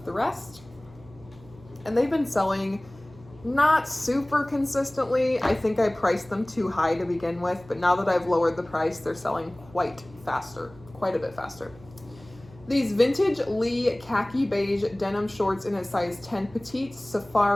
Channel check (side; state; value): right; noise; hum, 22 dB below the sound